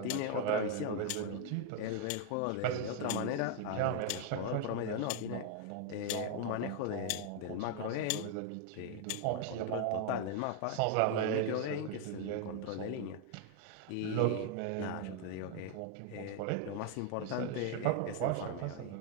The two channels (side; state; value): both; different; correlation 0.00